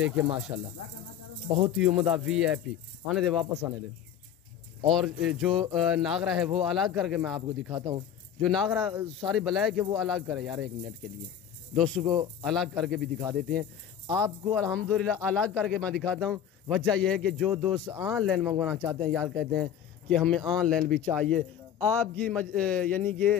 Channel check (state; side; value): quieter; right; 9.3 dB